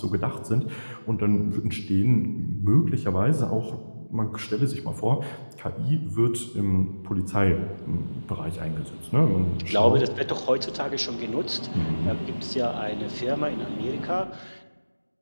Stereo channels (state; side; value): inverted; both; correlation -1.00